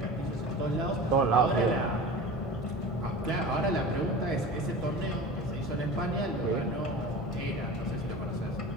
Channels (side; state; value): both; normal; correlation 0.34